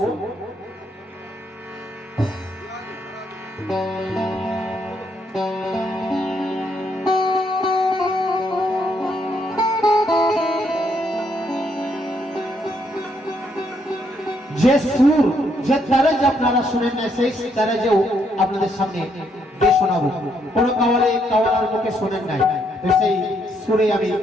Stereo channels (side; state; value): both; normal; correlation 0.73